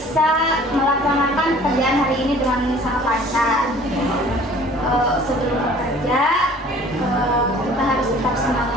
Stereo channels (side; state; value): both; normal; correlation 0.50